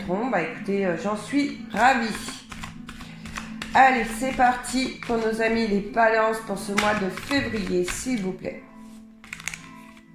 écoutez, j'en suis ravie. Allez, c'est parti pour nos amis les balances pour ce mois de février, s'il vous plaît.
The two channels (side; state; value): both; identical; correlation 1.00